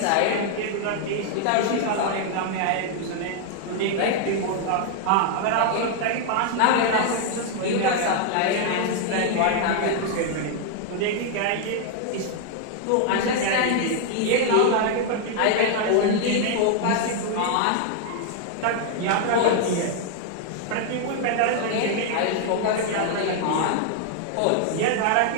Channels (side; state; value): both; different; correlation 0.00